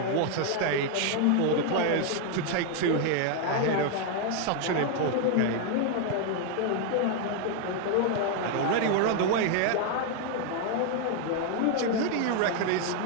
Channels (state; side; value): different; both; correlation 0.00